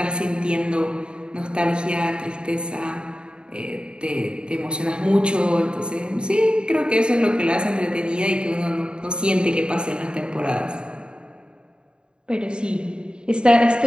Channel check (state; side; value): late; left; 0.051 ms